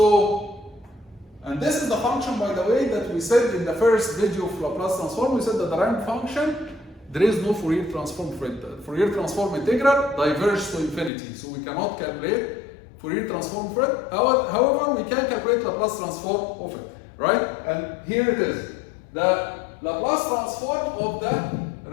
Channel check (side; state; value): right; drops out; at 11.1 s